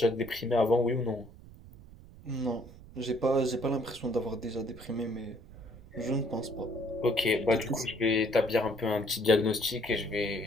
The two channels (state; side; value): noise; right; rumble, 19 dB below the sound